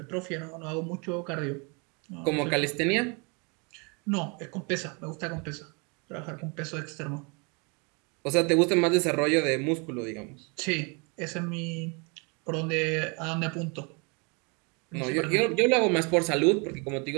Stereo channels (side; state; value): left; quieter; 32.6 dB